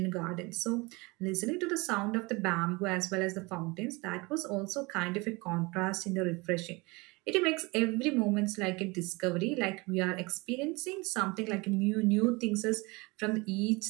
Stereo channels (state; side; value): quieter; left; 25.3 dB